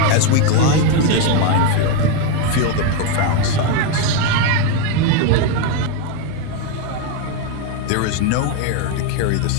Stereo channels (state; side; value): different; both; correlation 0.02